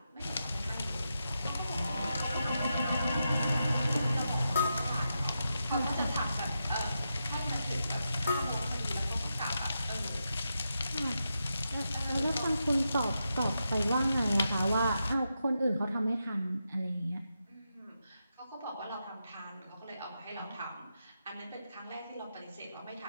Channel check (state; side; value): inverted; both; correlation -0.86